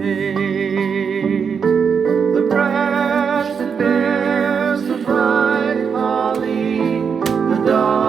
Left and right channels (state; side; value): quieter; left; 6.4 dB